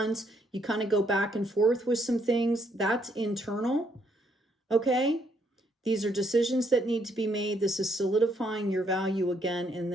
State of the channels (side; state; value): both; normal; correlation 0.71